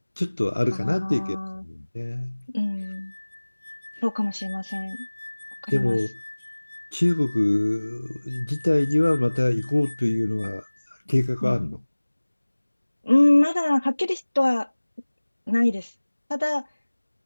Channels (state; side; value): inverted; both; correlation -1.00